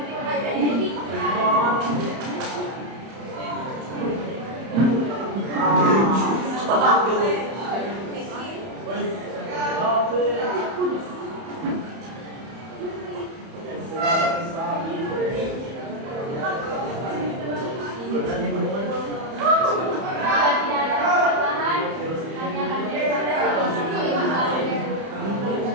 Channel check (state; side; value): late; left; 31 ms